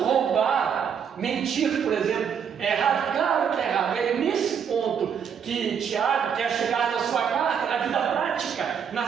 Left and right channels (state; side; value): quieter; left; 7.5 dB